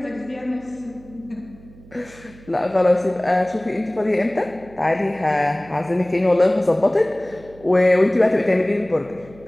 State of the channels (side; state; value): right; noise; hum, 22 dB below the sound